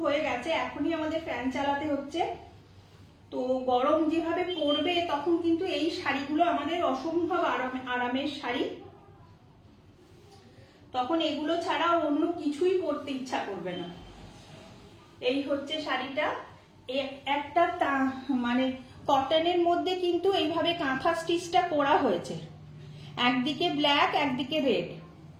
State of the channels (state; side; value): identical; both; correlation 1.00